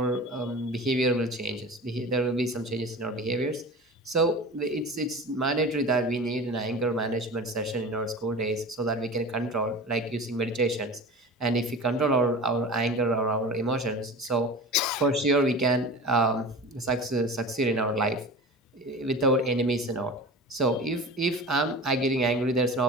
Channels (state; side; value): normal; both; correlation 0.35